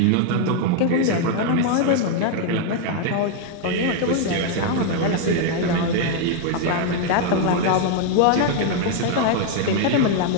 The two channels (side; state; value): both; different; correlation 0.00